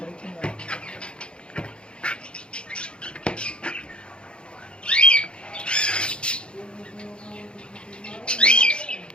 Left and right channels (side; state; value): right; late; 0.055 ms